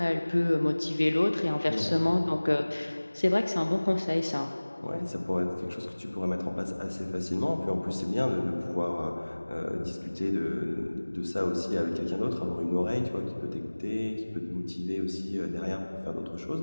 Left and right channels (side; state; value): both; inverted; correlation -1.00